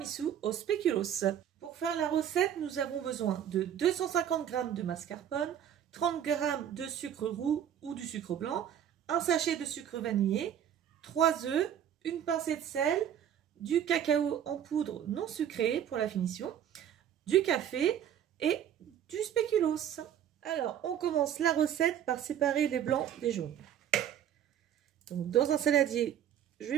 au spéculoos. Pour faire la recette, nous avons besoin de 250 g de mascarpone, 30 g de sucre roux ou du sucre blanc, un sachet de sucre vanillé, 3 œufs, une pincée de sel, du cacao en poudre non sucré pour la finition, du café et du spéculoos. Alors on commence la recette par séparer les blancs des jaunes. Donc, dans un saladier, je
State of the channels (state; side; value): quieter; left; 9.8 dB